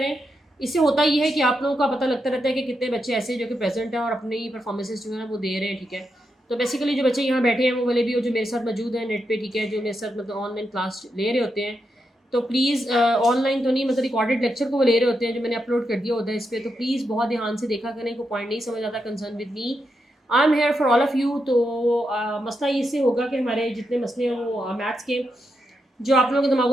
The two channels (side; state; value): both; normal; correlation 0.84